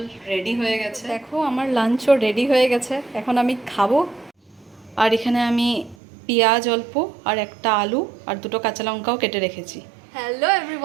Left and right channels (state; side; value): drops out; left; at 6.0 s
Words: রেডি হয়ে গেছে। দেখো আমার লাঞ্চও রেডি হয়ে গেছে, এখন আমি খাবো। আর এখানে আমি পেঁয়াজ অল্প আর একটা আলু আর দুটো কাঁচা লঙ্কাও কেটে রেখেছি। Hello